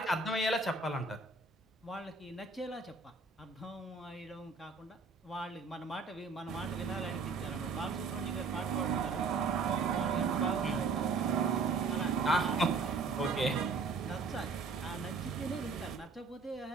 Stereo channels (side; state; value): left; quieter; 4.2 dB